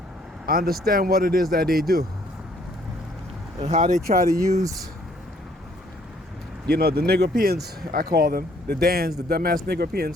understand what it is that they do and how they try to use, you know, the Negropeans, I call them, the Dans, the dumbass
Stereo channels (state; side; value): normal; both; correlation 0.64